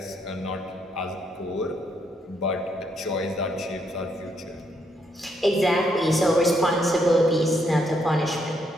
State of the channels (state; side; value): normal; both; correlation 0.74